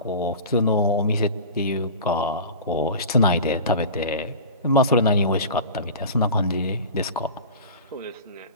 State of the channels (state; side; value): inverted; both; correlation -0.34